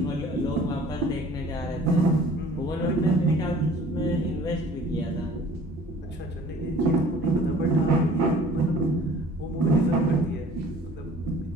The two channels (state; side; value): normal; both; correlation 0.50